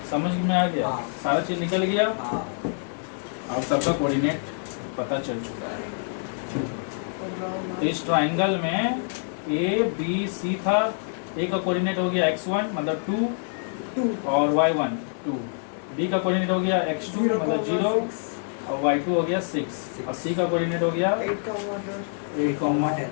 समझ में आ गया, सारा चीज निकल गया और सबका कोऑर्डिनेट पता चल चुका है। तो इस ट्राइंगल में ABC था, A का कोऑर्डिनेट हो गया x1 मतलब 2 और y1 2, B का कोऑर्डिनेट हो गया x2 मतलब 0 और y2 हो गया 6, और C का कोऑर्डिनेट हो गया 8,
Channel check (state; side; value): silent; right; digital silence